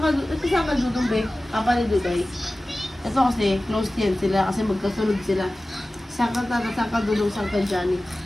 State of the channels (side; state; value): both; normal; correlation 0.97